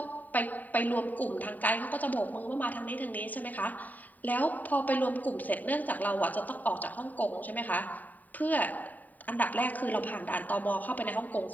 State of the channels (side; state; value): right; late; 0.082 ms